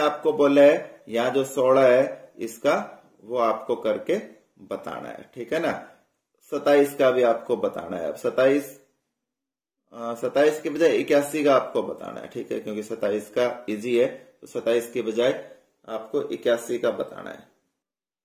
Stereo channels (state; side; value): identical; both; correlation 1.00